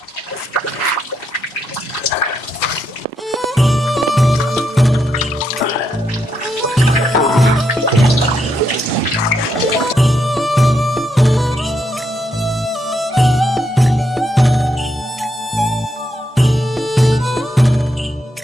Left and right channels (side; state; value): both; normal; correlation 0.79